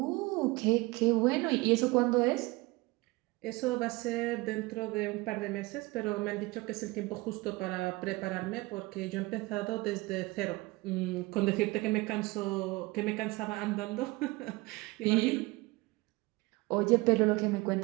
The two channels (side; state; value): left; quieter; 22.6 dB